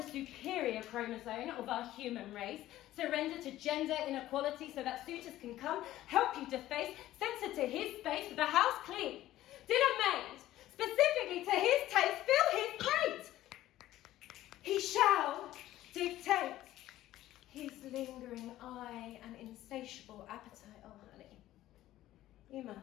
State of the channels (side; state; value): right; quieter; 14.5 dB